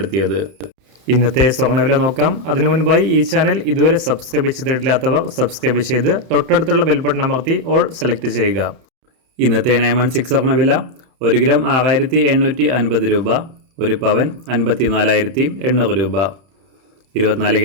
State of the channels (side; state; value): left; late; 31 ms